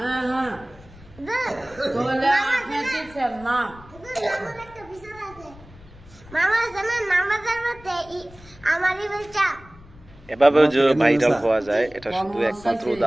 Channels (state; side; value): noise; left; rumble, 22 dB below the sound